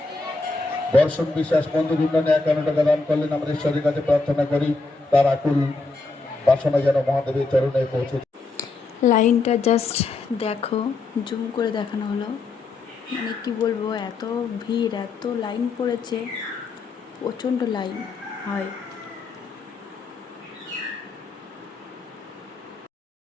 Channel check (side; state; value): right; quieter; 3.6 dB